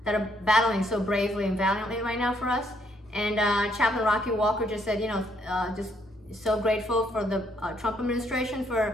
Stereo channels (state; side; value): normal; both; correlation 0.71